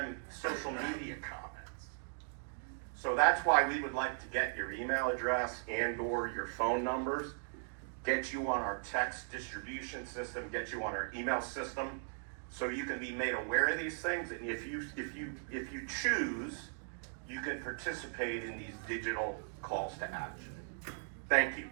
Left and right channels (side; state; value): left; silent; digital silence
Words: social media comments. So that's why we would like to get your email address and or your phone numbers, get you on our text distribution system, get you on our email system, so you can be made aware of these things. And if you choose, you can participate in these digital calls to action. Thank you.